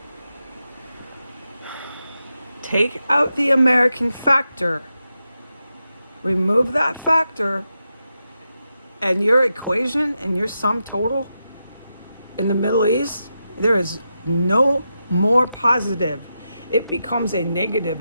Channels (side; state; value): both; inverted; correlation -0.88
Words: Take out the American factor. Remove that factor, and your equation and your sum total in the Middle East, there is no more positive. It becomes a